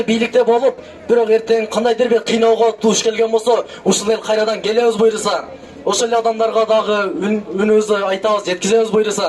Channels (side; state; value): both; identical; correlation 1.00